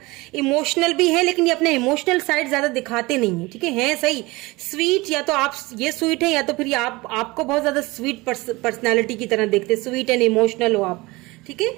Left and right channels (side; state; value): left; quieter; 22.4 dB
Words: इमोशनल भी है, लेकिन ये अपने इमोशनल साइड ज़्यादा दिखाते नहीं है। ठीक है सही स्वीट, या तो आप ये स्वीट है या तो फिर ये आपको बहुत ज़्यादा स्वीट पर्सनैलिटी की तरह देखते, स्वीट एंड इमोशनल हो आप। ठीक है,